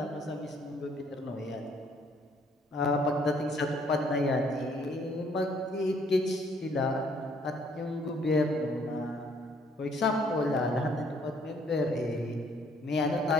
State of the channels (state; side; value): normal; both; correlation 0.64